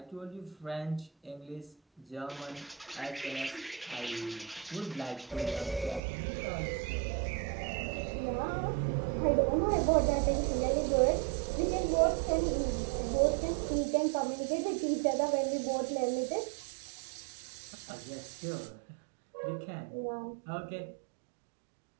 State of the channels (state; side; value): drops out; left; at 6.0 s